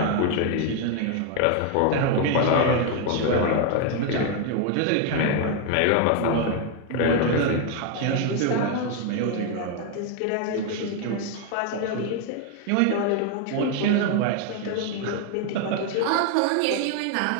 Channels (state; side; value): different; both; correlation 0.01